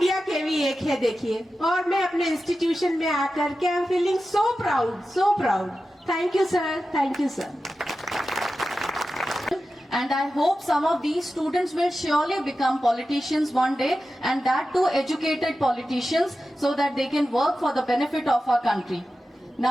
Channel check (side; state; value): both; normal; correlation 0.93